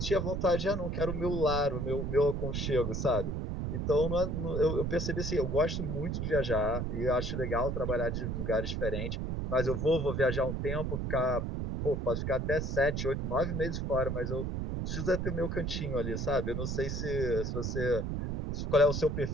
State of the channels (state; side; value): noise; right; rumble, 2 dB below the sound